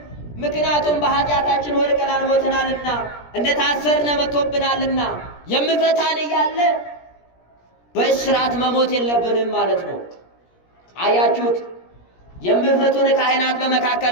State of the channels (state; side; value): late; right; 17 ms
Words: ምክንያቱም በኃጢአታችን ወድቀናል፣ ሞተናልና፣ እንደታሰርነ መጥቶብናልና። የምፈታን እያለ በእስራት መሞት የለብንም ማለት ነው። አያችሁት? የምፈቱን ካህናት